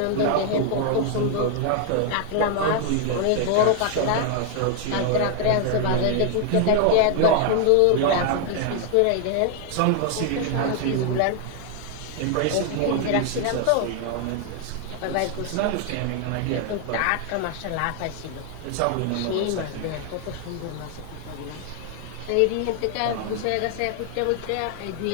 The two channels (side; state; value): both; different; correlation 0.00